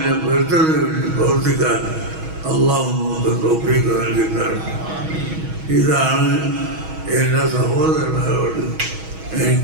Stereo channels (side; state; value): left; late; 6.3 ms